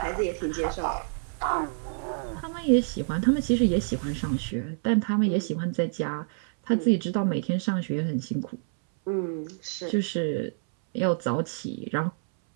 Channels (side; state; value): left; silent; 60 dB below the other